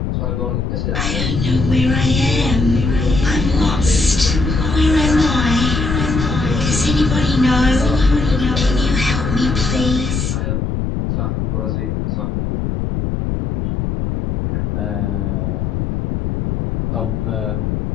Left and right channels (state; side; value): noise; left; rumble, 1 dB below the sound